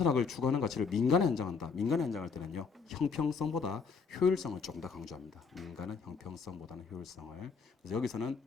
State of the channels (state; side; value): quieter; right; 5.4 dB